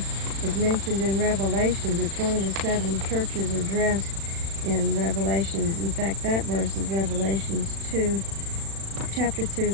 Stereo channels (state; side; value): late; left; 36 ms